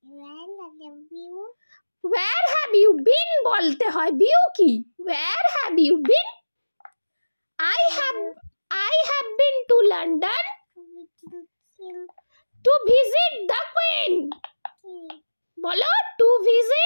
where have you been বলতে হয়, বিউ কি, where have you been? I have been to London to visit the Queen, বলো to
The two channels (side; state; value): both; inverted; correlation -1.00